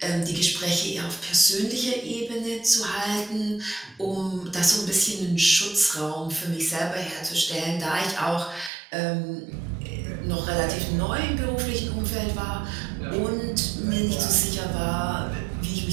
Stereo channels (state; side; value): drops out; left; at 8.7 s